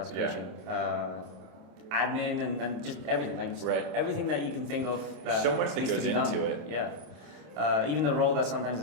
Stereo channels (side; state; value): left; late; 27 ms